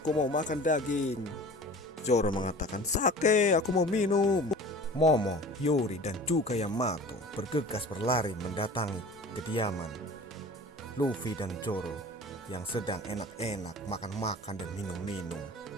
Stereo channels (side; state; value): both; normal; correlation 0.41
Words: mau makan daging." Zoro mengatakan, "Sake, aku mau minum." Momo, Hiyori, dan juga Yamato bergegas berlari mendatangi kediaman Luffy dan Zoro yang sedang enak-enak makan-makan dan minum-minum.